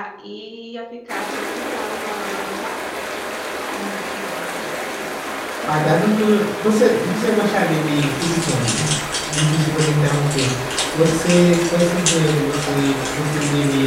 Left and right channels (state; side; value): identical; both; correlation 1.00